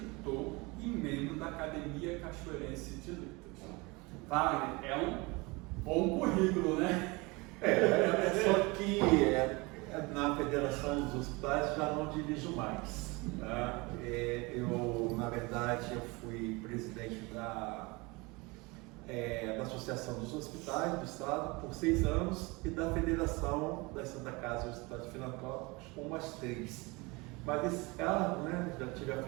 e membro da Academia Cachoeirense de Letras. Wagner, é um bom currículo, né? Só que na Federação dos Hospitais já não dirijo mais. Tá? Na verdade, eu fui presidente da Associação dos Hospitais do Estado por 6 anos e da Federação da Santa Casa dos Hospitais Filantrópicos por mais 3. Mas esse cargo, já tive à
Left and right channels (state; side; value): quieter; left; 25.5 dB